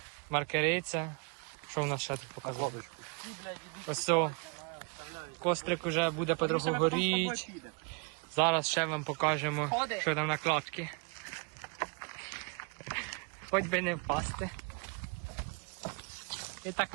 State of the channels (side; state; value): left; quieter; 34.6 dB